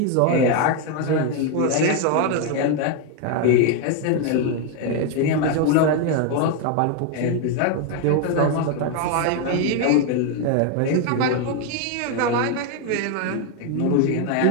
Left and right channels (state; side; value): different; both; correlation 0.01